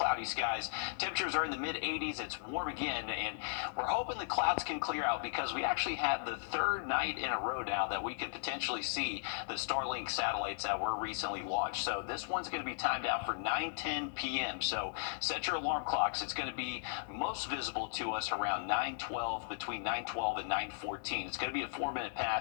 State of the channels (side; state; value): right; silent; digital silence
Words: skies. Temperatures are in the mid-80s. It's warm again, and we're hoping the clouds can clear out because we actually have the third night in a row now that we could potentially see the Starlink satellites that were recently launched. So this one's going to be timed out for 9:10 p.m. So set your alarm clocks. It's going to be most visible to us around 9:12, between 9:12 and 9:14. It's going to be a 4-minute